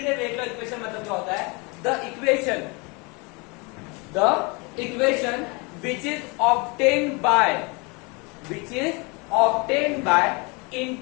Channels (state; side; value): quieter; right; 29.1 dB